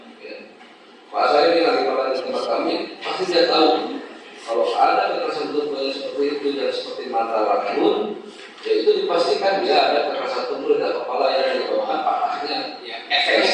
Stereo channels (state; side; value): identical; both; correlation 1.00